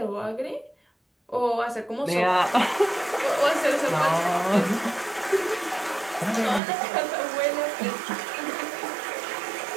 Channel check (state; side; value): drops out; left; at 6.6 s